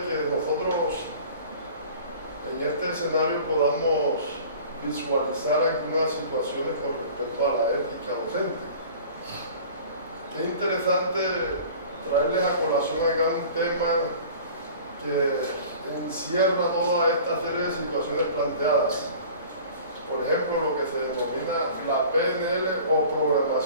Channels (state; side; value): inverted; both; correlation -0.44